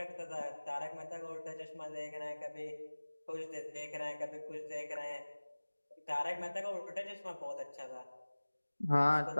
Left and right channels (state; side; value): inverted; both; correlation -1.00